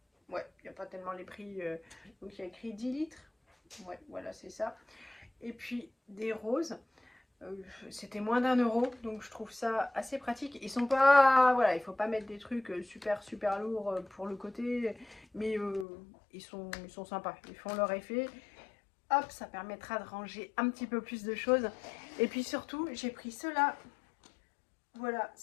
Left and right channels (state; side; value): drops out; right; at 15.9 s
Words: ouais, il n'y a pas tellement les prix. Donc il y a écrit 10 litres. Ouais, voilà, c'est ça. Et puis des roses. C'était moins d'1 euro, donc je trouve ça assez pratique. Ils sont pas, voilà, il faut pas mettre des trucs super lourds pour le côté, mais ils sont sympas. Ils font leur effet. Hop, ça permettra de ranger un petit peu plus de choses. Et puis surtout, j'ai pris ceux-là. Voilà,